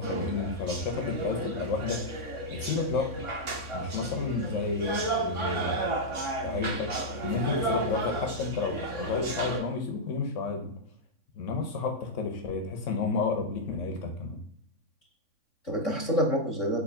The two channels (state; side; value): late; right; 3.6 ms